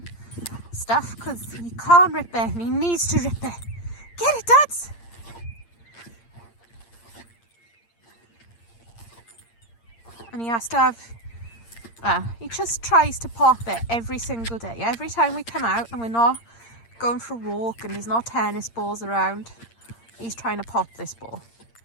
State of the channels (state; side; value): late; right; 8.7 ms